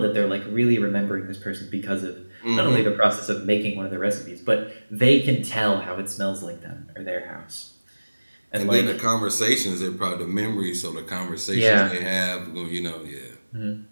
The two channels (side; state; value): both; inverted; correlation -1.00